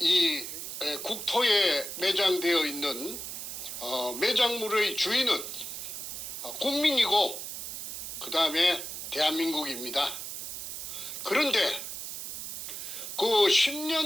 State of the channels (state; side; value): noise; right; hiss, 7 dB below the sound